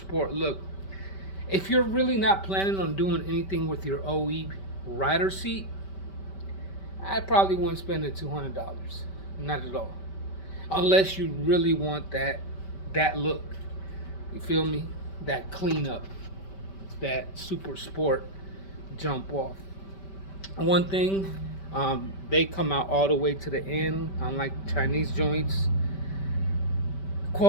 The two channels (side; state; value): right; late; 5.2 ms